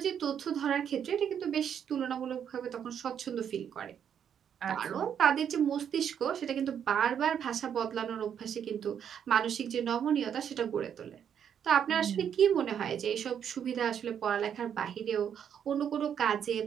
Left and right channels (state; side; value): quieter; left; 8.5 dB